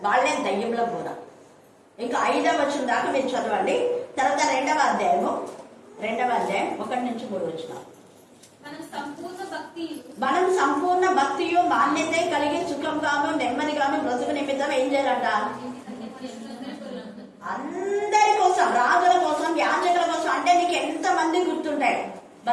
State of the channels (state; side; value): identical; both; correlation 1.00